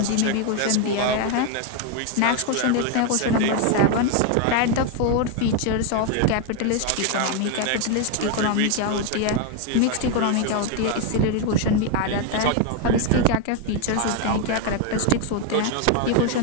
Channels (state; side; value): different; both; correlation 0.01